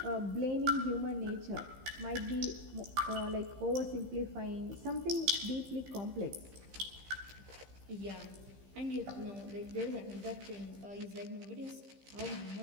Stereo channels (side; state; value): left; late; 15 ms